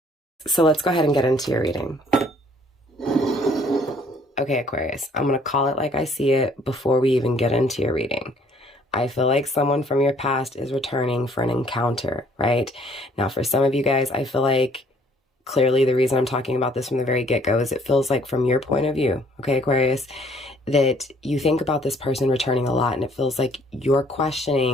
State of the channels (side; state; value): both; normal; correlation 0.60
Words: So let's go ahead and get into your reading. Okay, Aquarius, I'm going to call it like I see it before we even get into your reading. I feel like someone from your past is returning for an encounter, right? Now, for some of you guys, I feel like clearly the reason I'm talking about this from the very get-go is it feels like from your point of view, okay, Aquarius, that you think about this person returning a lot, and it feels like you're